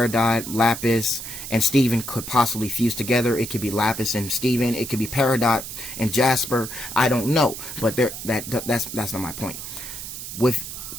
Lapis, and Steven could possibly fuse together. It could be Lapis and Steven. It could be Peridot and Jasper. I don't know, but that's not my point. With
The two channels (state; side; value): noise; right; hiss, 9 dB below the sound